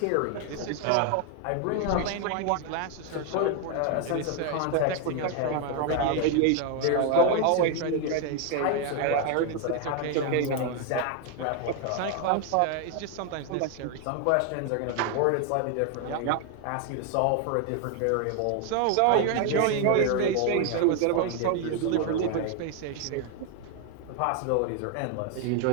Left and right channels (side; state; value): both; different; correlation 0.01